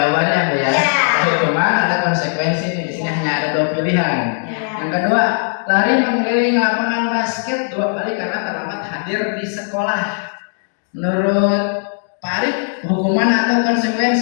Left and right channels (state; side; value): silent; right; 59 dB below the other